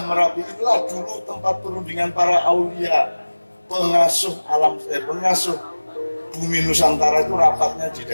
Merapi inilah dulu tempat perundingan para aulia, pengasuh alam, pengasuh bumi Nusantara itu rapatnya di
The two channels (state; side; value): inverted; both; correlation -1.00